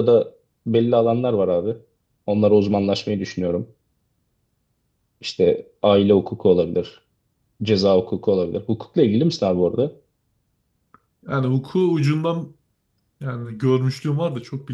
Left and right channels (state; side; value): identical; both; correlation 1.00